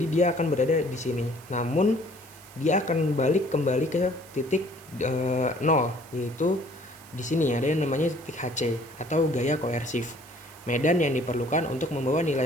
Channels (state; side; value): noise; right; hiss, 22 dB below the sound